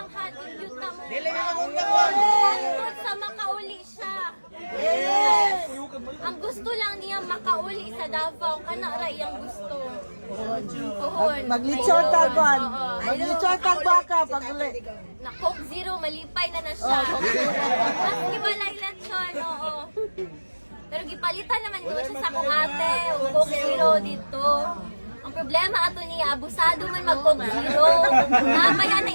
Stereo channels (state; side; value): inverted; both; correlation -1.00